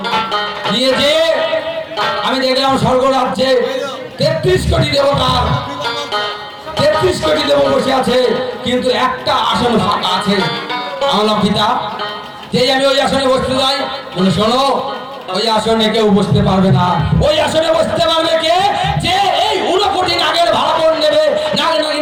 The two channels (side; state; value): both; identical; correlation 1.00